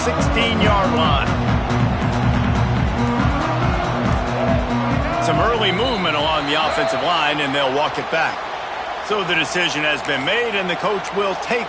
line. Some early movement along the offensive line, and they'll walk it back. So the decision has been made, and the coach will take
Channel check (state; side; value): identical; both; correlation 1.00